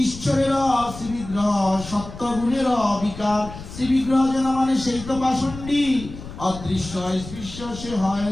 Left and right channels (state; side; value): noise; left; rumble, 13 dB below the sound